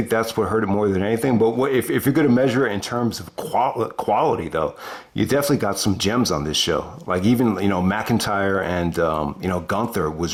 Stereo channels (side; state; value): both; identical; correlation 1.00